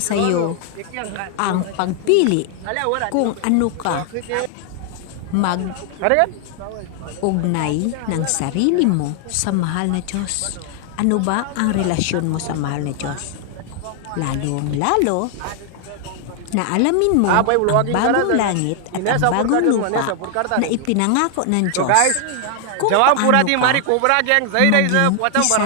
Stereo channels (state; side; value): different; both; correlation 0.00